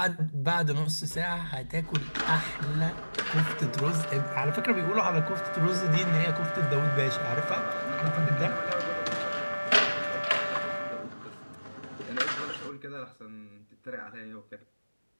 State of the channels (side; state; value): both; inverted; correlation -1.00